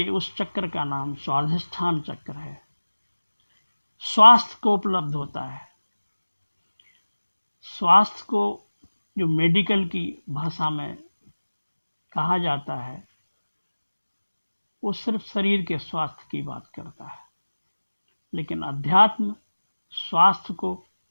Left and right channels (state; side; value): inverted; both; correlation -1.00